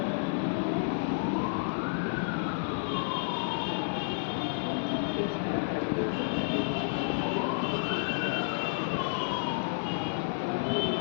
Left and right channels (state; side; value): silent; right; 57 dB below the other